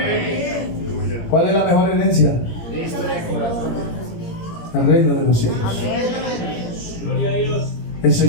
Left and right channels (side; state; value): right; late; 17 ms